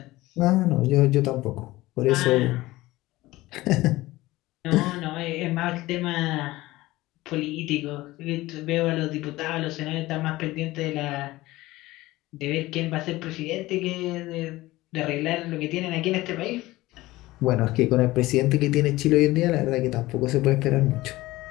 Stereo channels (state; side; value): quieter; right; 18.4 dB